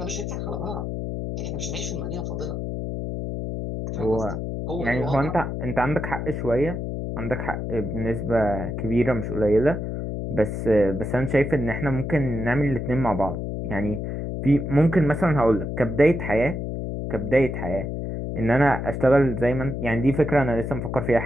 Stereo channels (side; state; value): left; noise; hum, 4 dB below the sound